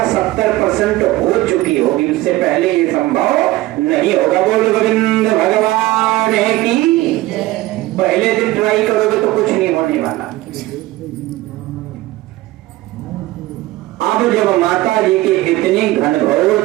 70% हो चुकी होगी, उससे पहले ये संभव नहीं होगा। बोल गोविंद भगवान की। पहले दिन ट्राई करोगे तो कुछ नहीं होने वाला। अब जब माता जी की इतनी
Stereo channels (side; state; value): left; quieter; 17.8 dB